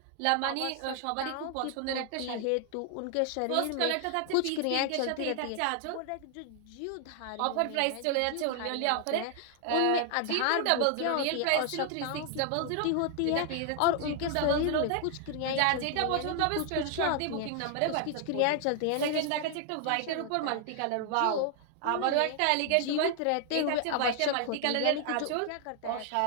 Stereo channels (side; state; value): both; different; correlation 0.00